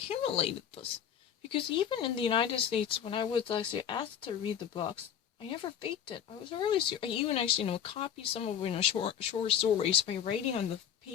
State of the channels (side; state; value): right; quieter; 8.9 dB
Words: this? Because even in the United States, when I was actually asked to read the books, I never faked it. I was really serious. I even actually, copied some of, short stories by writing on the